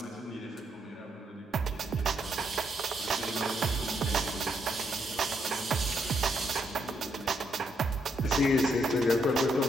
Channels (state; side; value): normal; both; correlation 0.76